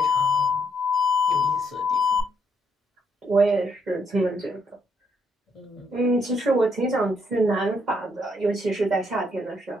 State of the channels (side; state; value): both; normal; correlation 0.73